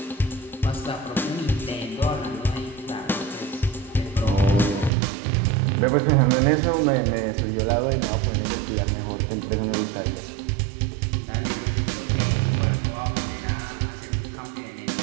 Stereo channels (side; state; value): left; drops out; at 4.9 s